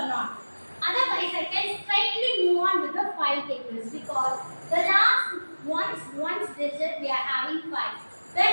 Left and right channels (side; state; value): both; inverted; correlation -1.00